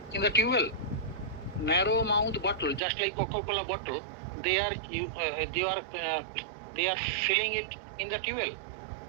in the tube well? Narrow mouth bottle, just like Coca-Cola bottle, they are filling it in the tube well.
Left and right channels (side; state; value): left; drops out; at 2.8 s